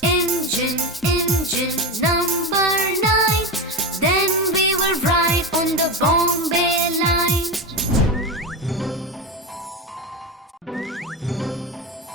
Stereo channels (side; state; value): both; normal; correlation 0.18